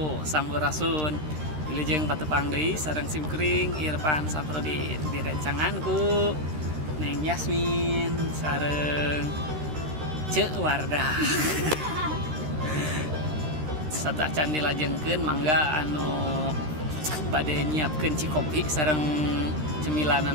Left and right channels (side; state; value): left; late; 13 ms